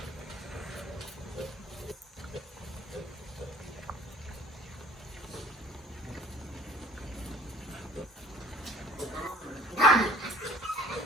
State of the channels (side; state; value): both; normal; correlation 0.50